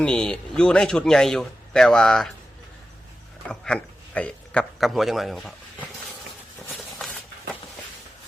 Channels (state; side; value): normal; both; correlation 0.93